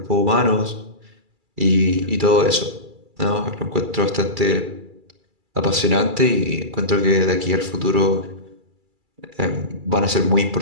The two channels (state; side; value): late; left; 2.3 ms